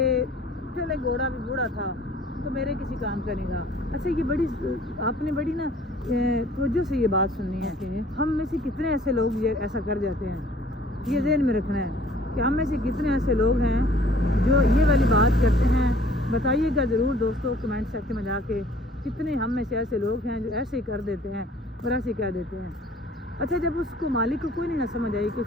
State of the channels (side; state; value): both; normal; correlation 0.54